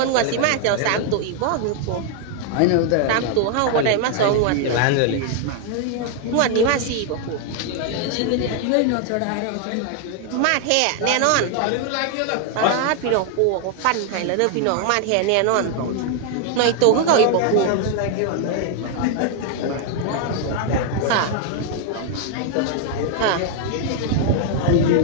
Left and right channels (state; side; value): different; both; correlation 0.00